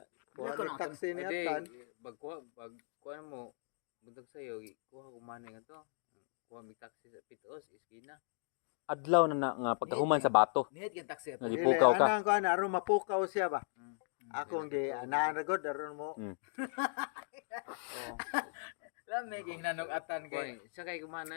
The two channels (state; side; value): silent; right; digital silence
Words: Kuha Gilakaw ni na taxi ni Ade, Atan. pagkuha mo, buntag sayo, kuha kumana nga to. Kuha may taxi sa Pitos, iskina. Adlaw na nga pagkahuman sa bato. Nihit kang taxi ato. Nagi- Ipukaw ka. Anang kon aron mapukaw siya ba? Mm. Ako gi anaragod aron mo. Lami kay nanog Atan Kuha, kay. sakay